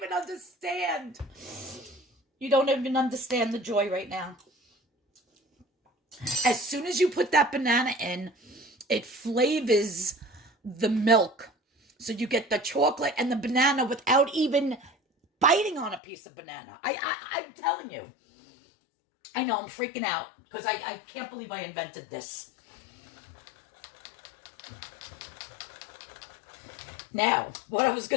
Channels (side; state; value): right; drops out; at 16.0 s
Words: understand. You don't even understand the joy right now. As soon as you put that banana in, it flavors the milk. So you get the chocolate and the banana without even biting on a piece of banana. I'm telling you. I know, I'm freaking out because I can't believe I invented this. Now, what I was